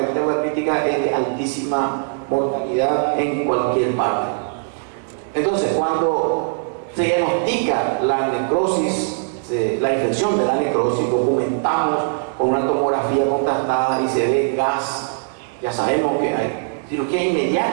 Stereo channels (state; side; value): silent; left; 59 dB below the other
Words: hepática es de altísima mortalidad en cualquier parte. Entonces, cuando se diagnostica la necrosis, la infección de la necrosis, documentamos con una tomografía contrastada y se ve gas, ya sabemos que hay cirugía